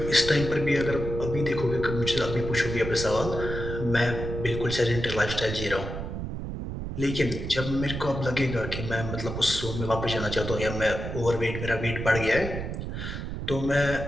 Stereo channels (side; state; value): right; noise; rumble, 6 dB below the sound